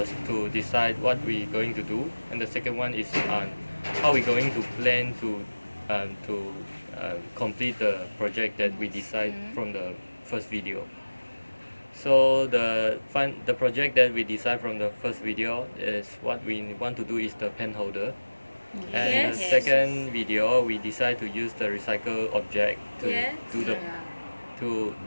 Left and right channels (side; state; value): both; inverted; correlation -1.00